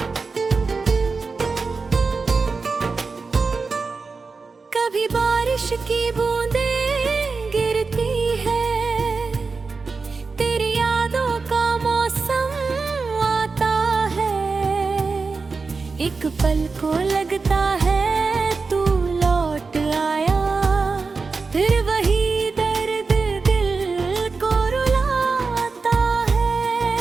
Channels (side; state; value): left; quieter; 4.4 dB